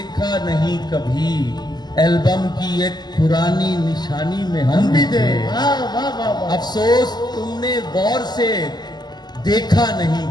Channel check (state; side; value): late; right; 0.21 ms